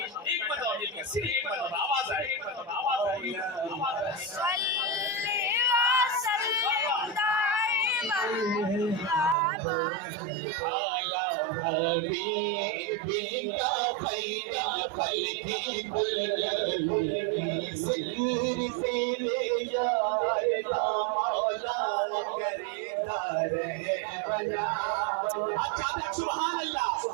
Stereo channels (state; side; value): drops out; left; at 9.3 s